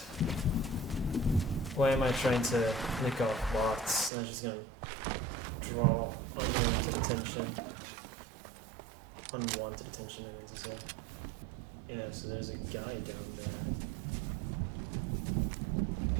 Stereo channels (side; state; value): left; drops out; at 4.1 s